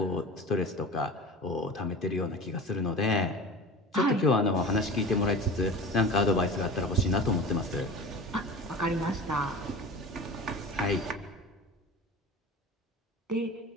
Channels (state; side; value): normal; both; correlation 0.34